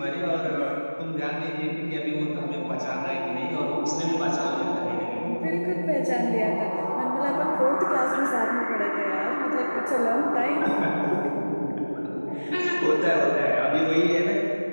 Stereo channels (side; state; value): both; inverted; correlation -1.00